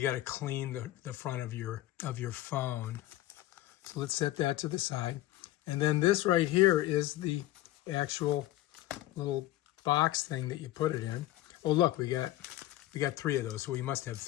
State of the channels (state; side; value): quieter; right; 15.3 dB